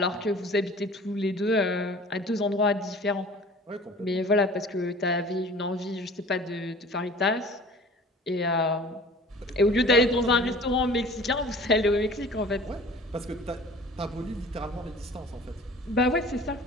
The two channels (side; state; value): both; normal; correlation 0.45